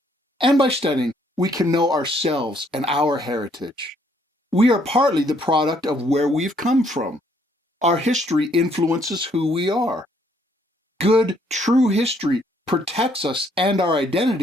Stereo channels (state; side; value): normal; both; correlation 0.67